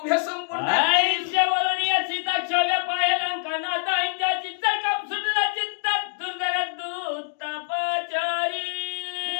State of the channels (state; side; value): silent; right; digital silence